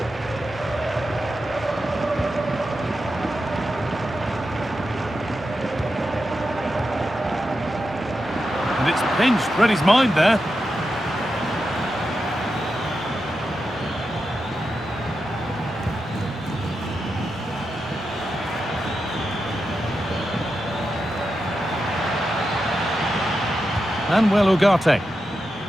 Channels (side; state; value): both; normal; correlation 0.88